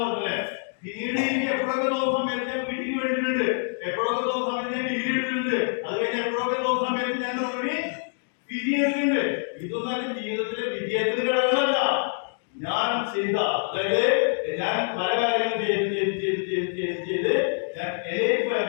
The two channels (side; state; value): right; silent; digital silence